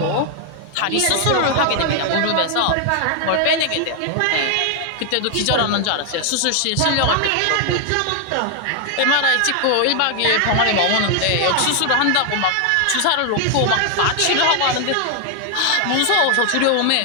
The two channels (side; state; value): both; different; correlation 0.00